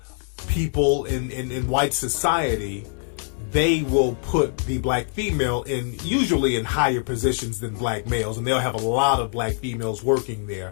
people in white society, they will put the black female usually in higher positions than black males, and they'll have a lot of black females working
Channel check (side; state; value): right; silent; 58 dB below the other